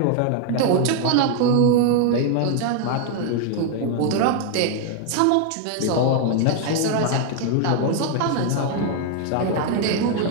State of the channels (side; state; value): both; different; correlation 0.00